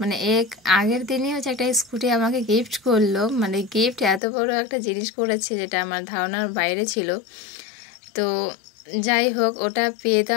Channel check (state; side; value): drops out; right; at 4.2 s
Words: আগের দিনই হচ্ছে একটা স্কুটি আমাকে গিফট করলো। মানে গিফট এত বড় একটা জিনিস করেছে যেটা আমার ধারণার বাইরে ছিল। তো যাই হোক, ওটা পেয়ে তো